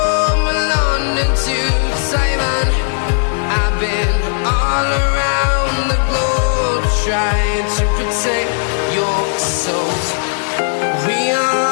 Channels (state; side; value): silent; right; digital silence